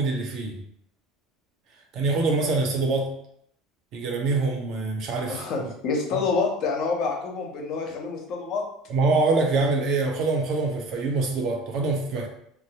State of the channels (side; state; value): both; normal; correlation 0.39